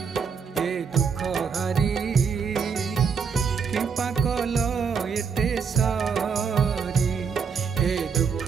ए दुख हारी कृपा कल एते सारी ए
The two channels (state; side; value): quieter; left; 6.1 dB